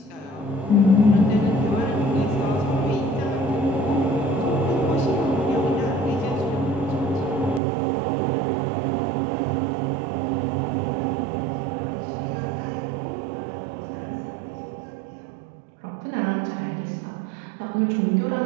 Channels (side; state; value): left; drops out; at 7.6 s